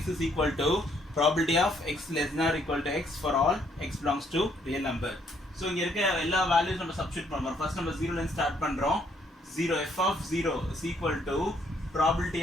is equal to probability of x less than or equal to x for all x belongs to real number. So இங்க இருக்க எல்லா values நம்ம substitute பண்ணுறோம். First நம்ம 0ல இருந்து start பண்றோம். 0 f of 0 is equal to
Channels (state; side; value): normal; both; correlation 0.69